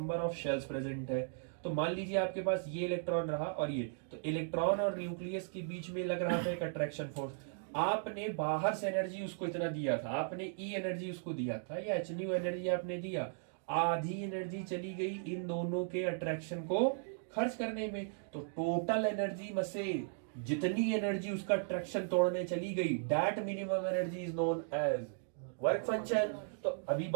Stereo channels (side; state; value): left; silent; digital silence